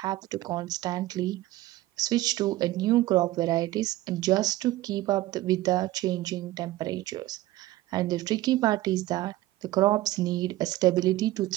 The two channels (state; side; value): quieter; left; 16.6 dB